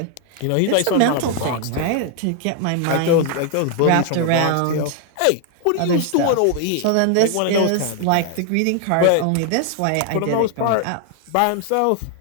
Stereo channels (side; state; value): both; different; correlation 0.00